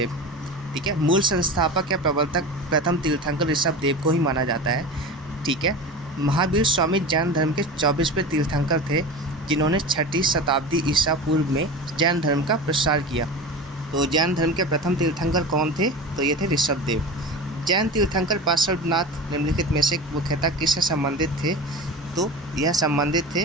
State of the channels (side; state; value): both; normal; correlation 0.30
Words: ठीक है, मूल संस्थापक या प्रवर्तक प्रथम तीर्थंकर ऋषभदेव को ही माना जाता है। ठीक है, महावीर स्वामी जैन धर्म के 24वें तीर्थंकर थे जिन्होंने 6वीं शताब्दी ईसा पूर्व में जैन धर्म का प्रसार किया। तो जैन धर्म के प्रथम तीर्थंकर कौन थे? तो ये थे ऋषभदेव। जैन तीर्थंकर पार्श्वनाथ निम्नलिखित में से मुख्यतः किससे संबंधित थे? तो यह संबंधित